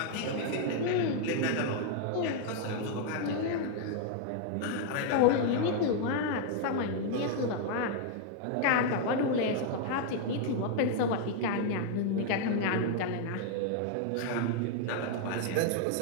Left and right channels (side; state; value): both; different; correlation 0.00